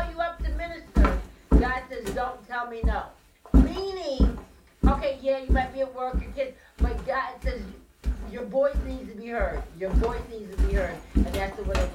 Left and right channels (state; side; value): identical; both; correlation 1.00